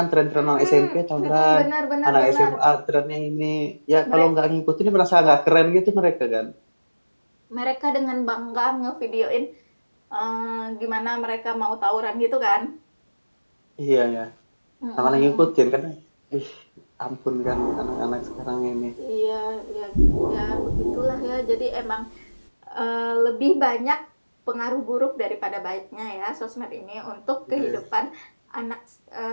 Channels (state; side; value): inverted; both; correlation -1.00